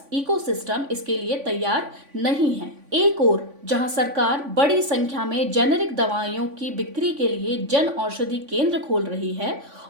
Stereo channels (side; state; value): left; late; 3.5 ms